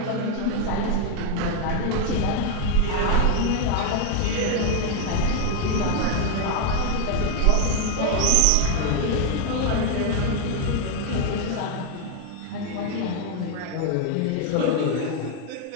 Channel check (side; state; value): both; different; correlation 0.01